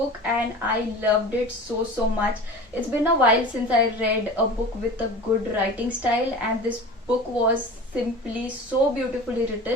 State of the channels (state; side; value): normal; both; correlation 0.36